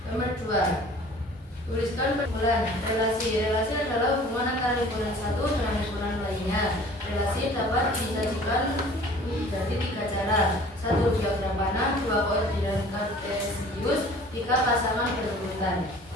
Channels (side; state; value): both; normal; correlation 0.48